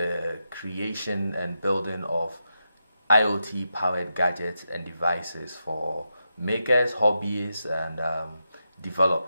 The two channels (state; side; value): inverted; both; correlation -0.86